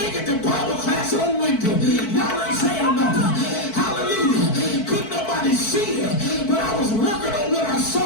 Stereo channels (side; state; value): right; late; 4.5 ms